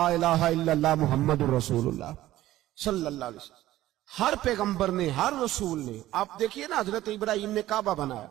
الہ الا اللہ محمد رسول اللہ صلی اللہ علیہ وسلم۔ ہر پیغمبر نے، ہر رسول نے، آپ دیکھیے نا حضرت ابراہیم نے کعبہ بنایا۔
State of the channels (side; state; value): left; quieter; 14.9 dB